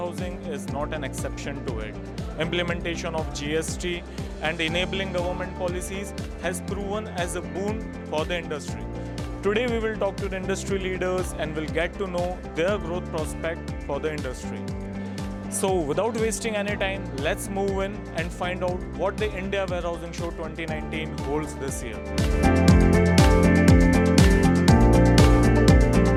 is not an exception to it. Implementation of GST and enabling government policies has proven as a boon for the industry. Today we will talk to the industry leaders and will get to know their growth prospect for the industry. So without wasting any time, let's move in and find out what the India Warehousing Show 2019 holds this year.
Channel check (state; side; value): identical; both; correlation 1.00